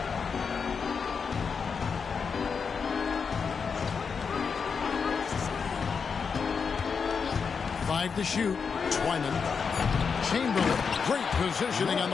Five to shoot. Twyman. Chamberlain, great positioning on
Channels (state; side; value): quieter; right; 5.8 dB